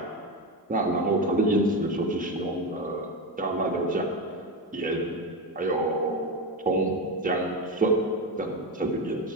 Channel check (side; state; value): both; normal; correlation 0.16